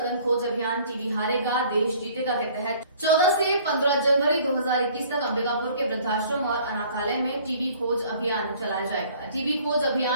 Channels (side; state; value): both; inverted; correlation -0.54